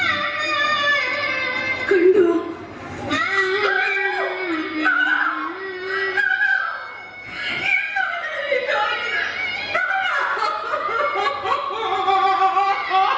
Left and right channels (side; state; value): both; identical; correlation 1.00